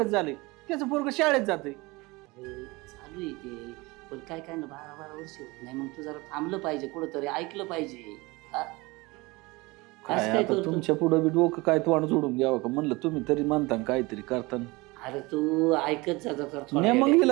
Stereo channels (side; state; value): left; quieter; 23.5 dB